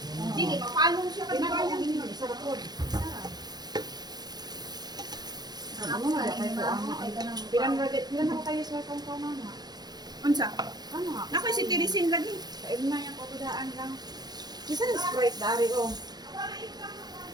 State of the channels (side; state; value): left; late; 0.19 ms